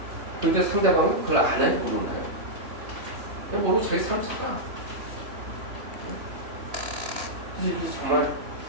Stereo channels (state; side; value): late; left; 3.0 ms